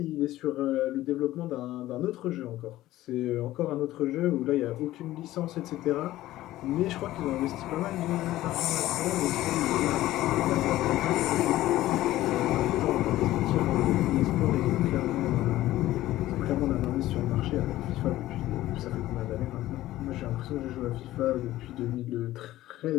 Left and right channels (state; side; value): quieter; right; 15.4 dB